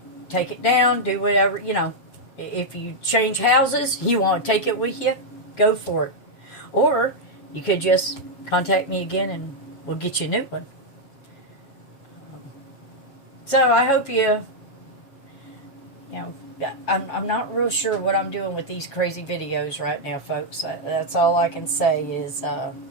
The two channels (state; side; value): late; right; 7.2 ms